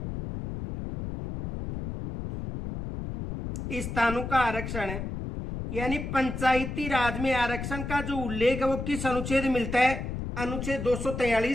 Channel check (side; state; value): left; noise; rumble, 6 dB below the sound